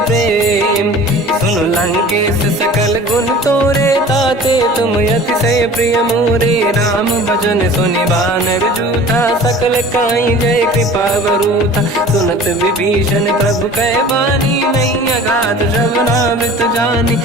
प्रेम सुन लंकेश सकल गुण तोरे ताते तुम अतिशय प्रिय मोरे राम भजन सुनि बानर जूथा सकल काई जय कृपा वरूथा सुनत विभीषण प्रभु कह बानी नहीं अगाध श्रवणामृत जानी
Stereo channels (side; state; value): both; normal; correlation 0.43